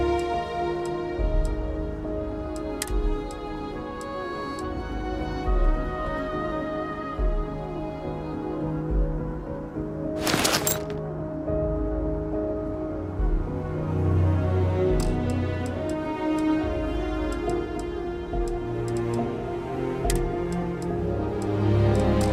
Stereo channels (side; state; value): both; identical; correlation 1.00